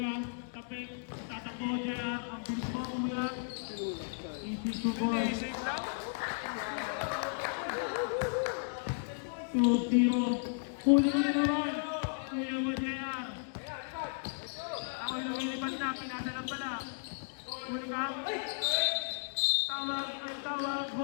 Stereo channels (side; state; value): right; silent; digital silence